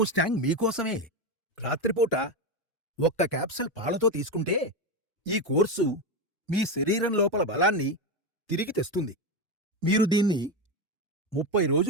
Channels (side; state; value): both; normal; correlation 0.14